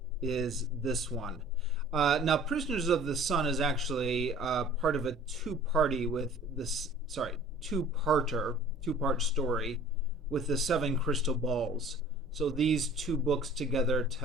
is this one. Now, Prisoners of the Sun is actually part of a two-party with this, sorry, two-part story with the seven crystal balls. So these two books together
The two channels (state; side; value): normal; both; correlation 0.48